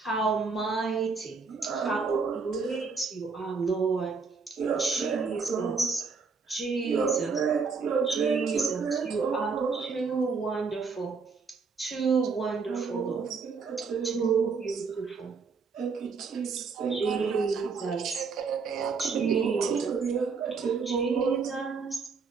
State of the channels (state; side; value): quieter; left; 5.0 dB